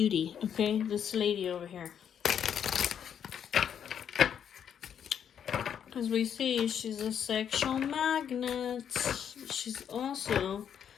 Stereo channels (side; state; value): right; quieter; 8.5 dB